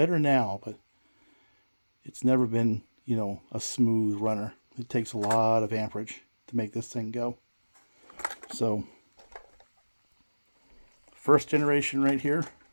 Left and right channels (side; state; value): both; inverted; correlation -1.00